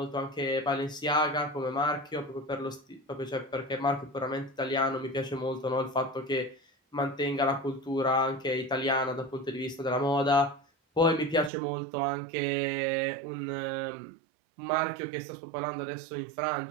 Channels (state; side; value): drops out; left; at 11.5 s